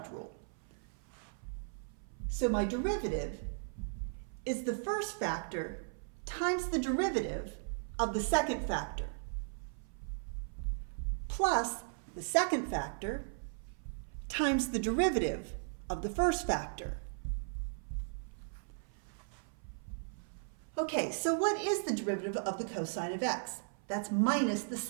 rule. So my derivative is the first factor times the derivative of the second factor plus the second factor times the derivative of the first factor. Okay, so what is the derivative of the cosine of x? That's minus the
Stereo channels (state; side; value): silent; left; 53 dB below the other